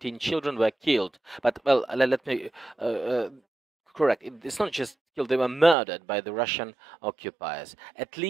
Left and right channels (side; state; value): left; drops out; at 5.8 s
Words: children were killed. But, well, let me correct. It's not just killed, they were murdered by the Russian occupiers. At